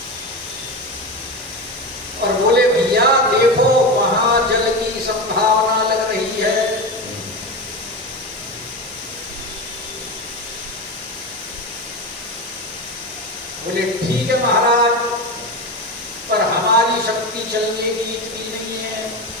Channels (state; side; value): normal; both; correlation 0.20